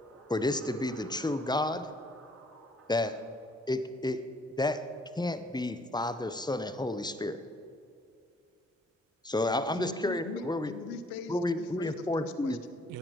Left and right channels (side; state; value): both; normal; correlation 0.63